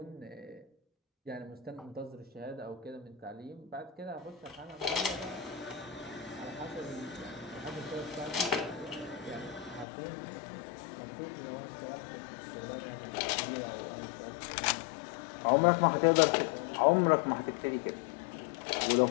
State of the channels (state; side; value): drops out; right; at 9.9 s